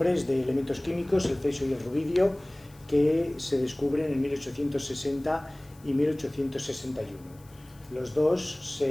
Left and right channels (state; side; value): noise; left; hiss, 27 dB below the sound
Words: de elementos químicos, el cesio y el rubidio, que se descubren en 1860 y 1861. Los dos